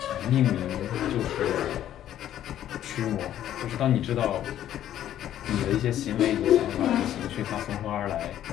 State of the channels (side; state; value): right; quieter; 11.6 dB